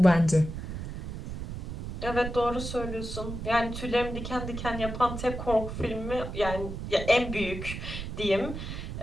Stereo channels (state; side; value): noise; right; rumble, 7 dB below the sound